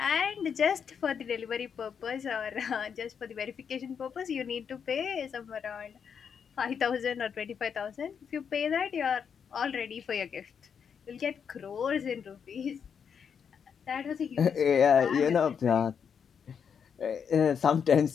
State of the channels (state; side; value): quieter; right; 7.1 dB